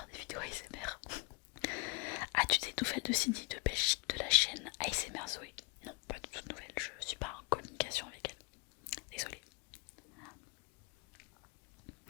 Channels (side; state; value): right; quieter; 30.6 dB